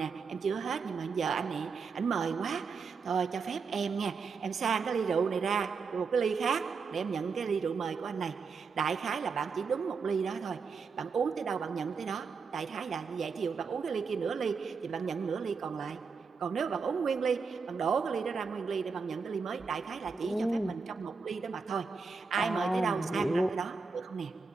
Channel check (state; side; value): quieter; left; 5.1 dB